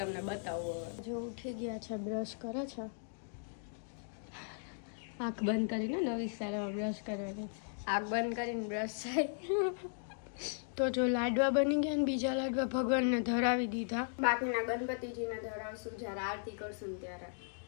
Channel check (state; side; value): silent; right; digital silence